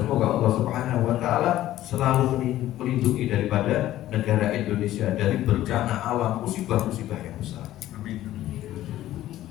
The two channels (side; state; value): right; quieter; 14.0 dB